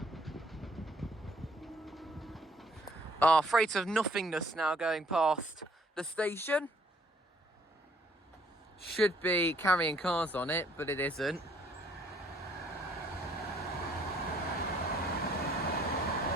Our freight of nothingness now going past the station. Should be carrying cars on it, but it isn't.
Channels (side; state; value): both; normal; correlation 0.63